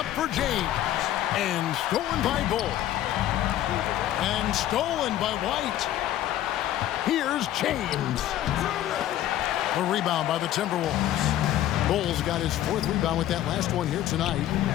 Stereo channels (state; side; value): quieter; right; 12.8 dB